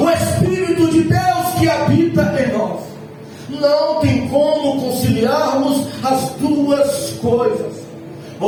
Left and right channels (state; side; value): identical; both; correlation 1.00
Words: Espírito de Deus que habita em nós. Não tem como conciliarmos as duas coisas.